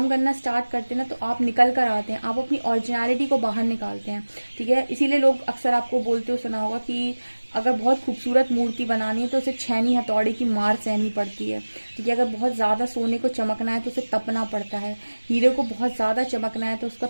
करना स्टार्ट करते हैं ना, तो आप निकल कर आते हैं, आप अपनी ओरिजिनलिटी को बाहर निकालते हैं, ठीक है। इसीलिए लोग अक्सर आपको बोलते हो सुना होगा कि अगर बहुत खूबसूरत मूर्ति बनानी है तो उसे छेनी हथौड़े की मार सहनी पड़ती है, ठीक है। अगर बहुत ज़्यादा सोने को चमकना है तो उसे तपना पड़ता है, हीरे को बहुत ज़्यादा चमकना है तो उसको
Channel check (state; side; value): inverted; both; correlation -1.00